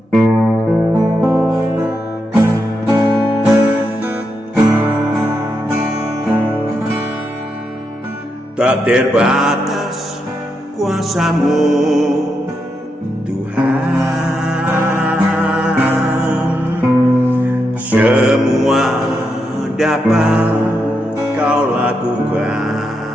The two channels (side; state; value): both; normal; correlation 0.84